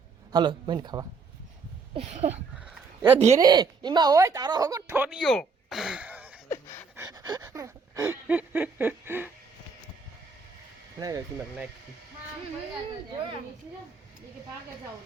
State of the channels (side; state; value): left; quieter; 4.8 dB